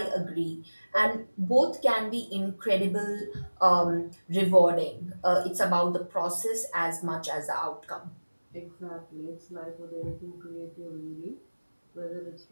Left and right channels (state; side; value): inverted; both; correlation -1.00